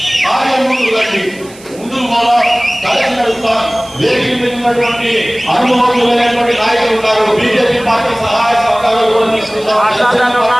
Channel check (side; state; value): right; noise; hiss, 22 dB below the sound